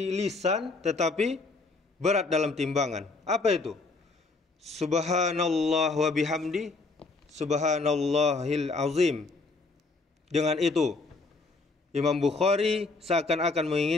lisan tetapi berat dalam timbangan. Apa itu? Subhanallah wa bihamdi, subhanallahil azim. Dengan itu Imam Bukhari seakan-akan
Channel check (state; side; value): quieter; right; 3.7 dB